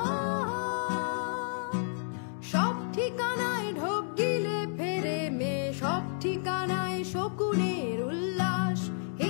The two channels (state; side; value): silent; right; digital silence